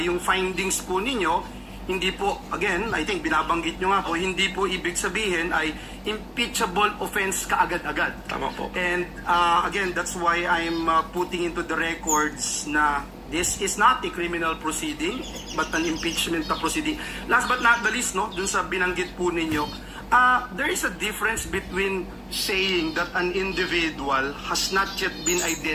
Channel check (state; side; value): identical; both; correlation 1.00